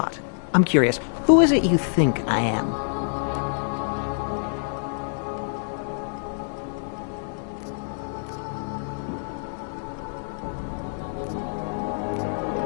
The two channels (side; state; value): right; silent; digital silence